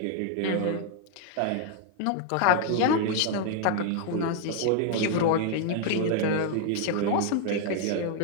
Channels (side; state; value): both; different; correlation 0.00